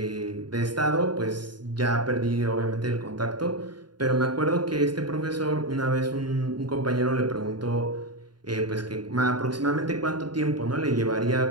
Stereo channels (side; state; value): left; late; 0.71 ms